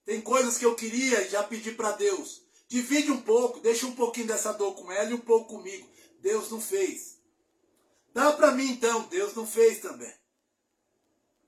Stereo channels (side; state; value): both; identical; correlation 1.00